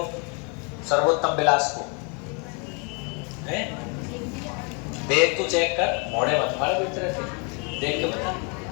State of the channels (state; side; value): quieter; right; 34.6 dB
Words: सर्वोत्तम विलास को है। देख तू चेक कर, मोड़े मत मारे बेच रहे थे, देख के बता।